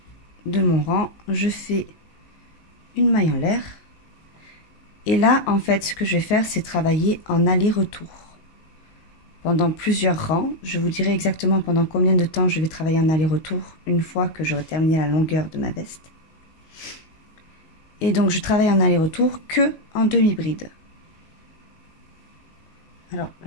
de mon rang. Je fais une maille en l'air. Et là, en fait, ce que je vais faire, c'est travailler en aller-retour. Pendant plusieurs rangs, je vous dirai exactement pendant combien de temps je vais travailler en aller-retour une fois que j'aurai terminé la longueur de ma veste. Et donc, je travaille en aller-retour que en demi-bride. Alors,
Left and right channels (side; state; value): right; late; 19 ms